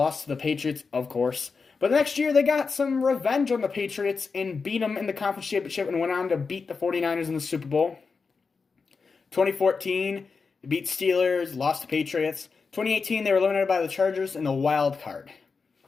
to the Patriots, of course. But the next year, they got some revenge on the Patriots and beat them in the conference championship and went on to beat the 49ers in the Super Bowl. 2014, they beat Steelers, lost to Patriots. 2018, they were eliminated by the Chargers in the wild card.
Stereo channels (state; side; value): quieter; right; 4.9 dB